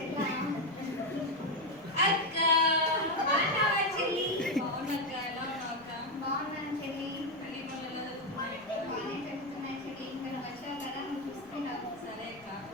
అక్క బాగున్నావా చెల్లి? బాగున్నాక ఎలా ఉన్నావు అక్క? బాగున్నాను చెల్లి. పెళ్లి పనులు ఎలా జరుగుతున్నాయి? బాగానే జరుగుతున్నాయి చెల్లి. ఇంకా నువ్వు వచ్చావు కదా, నువ్వు చూసుకుంటావు. సరే అక్క,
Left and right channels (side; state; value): left; noise; rumble, 27 dB below the sound